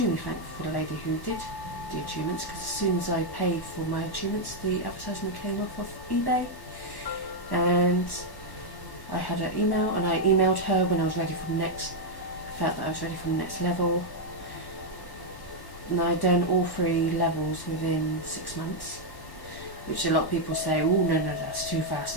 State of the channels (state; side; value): late; right; 1.1 ms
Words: thankful for the lady who did the attunements, because as soon as I paid for my attunements, the advertisement came off of eBay. And I had her email, and I emailed her when I was ready for the next, felt that I was ready for the next level. And I'd done all 3 levels within 6 months, which a lot of people say, oh no, that's too fast,